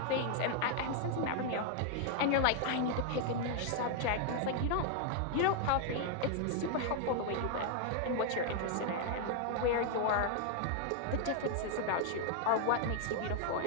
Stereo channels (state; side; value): different; both; correlation 0.00